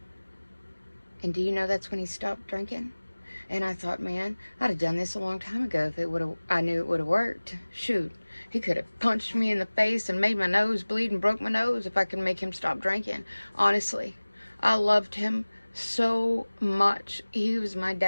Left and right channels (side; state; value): both; inverted; correlation -1.00